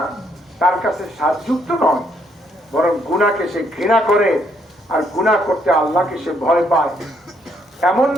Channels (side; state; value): both; normal; correlation 0.71